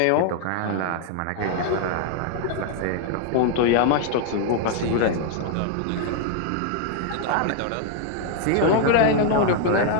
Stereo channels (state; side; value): different; both; correlation 0.00